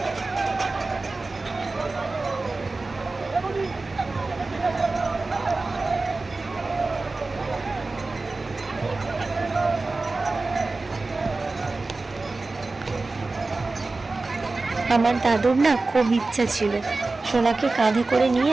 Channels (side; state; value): left; quieter; 3.5 dB